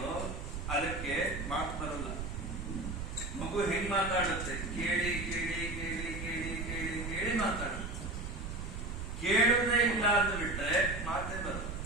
ಅದಕ್ಕೆ ಮಾತು ಬರಲ್ಲ. ಮಗು ಹೆಂಗ್ ಮಾತಾಡುತ್ತೆ? ಕೇಳಿ ಕೇಳಿ ಕೇಳಿ ಕೇಳಿ ಕೇಳಿ ಕೇಳಿ ಮಾತಾಡುತ್ತೆ. ಕೇಳುವುದೇ ಇಲ್ಲ ಅಂತ ಬಿಟ್ರೆ ಮಾತೇ ಬರಲ್ಲ.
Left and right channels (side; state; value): right; noise; rumble, 6 dB below the sound